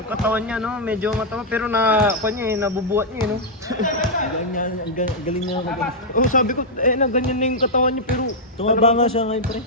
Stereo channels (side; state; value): both; normal; correlation -0.05